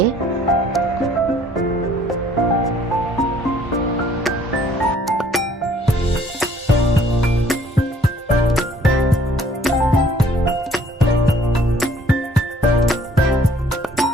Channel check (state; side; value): normal; both; correlation 0.59